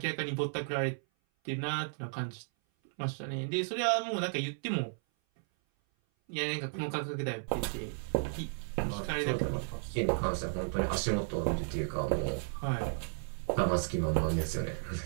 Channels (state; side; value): silent; left; 55 dB below the other